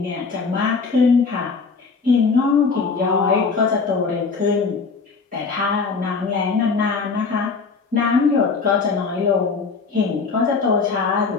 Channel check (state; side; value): quieter; right; 4.8 dB